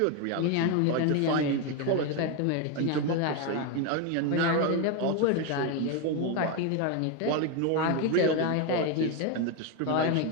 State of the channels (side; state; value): both; different; correlation 0.02